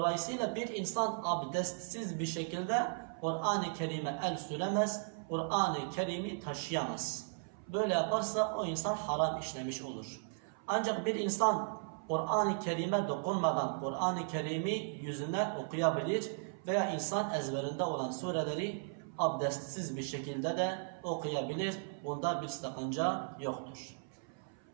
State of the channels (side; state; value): left; silent; 54 dB below the other